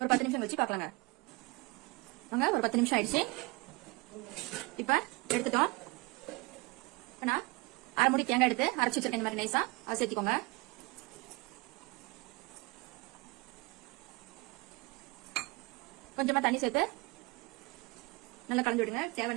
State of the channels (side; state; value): left; quieter; 24.9 dB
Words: 10 நிமிஷம் வச்சு பார்க்கலாங்க. வாங்க, ஒரு 10 நிமிஷம் ஆயிடுச்சு. இப்ப எடுத்துட்டோம். நான் 1/2 மூடி தேங்காய் எடுத்து அரைச்சு வச்சிருக்கேன். இந்த மாதிரி நைஸா அதை சேர்த்துக்கோங்க. கொஞ்சமா தண்ணி சேர்த்து நல்லா கலந்து விடுங்க.